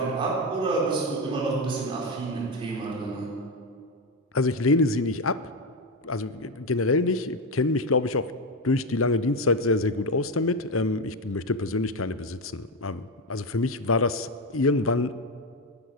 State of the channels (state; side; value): normal; both; correlation 0.11